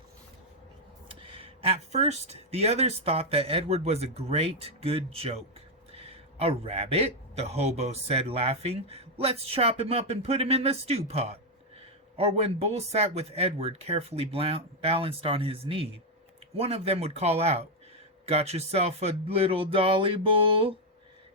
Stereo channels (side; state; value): both; normal; correlation 0.02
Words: At first, the others thought that Edward was a great, good joke. "A rabbit?" the hobo said, laughing. "Let's chop him up and put him in the stew pot." Or when Bull sat with Edward carefully balanced on his knee, one of them would call out, "Got yourself a little dolly, Bull?"